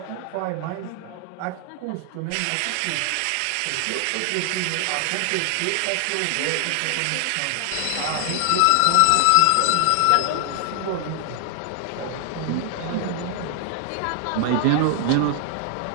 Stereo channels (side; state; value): both; different; correlation 0.00